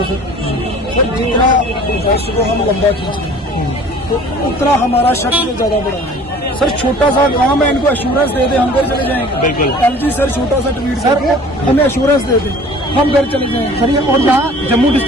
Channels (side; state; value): both; normal; correlation 0.48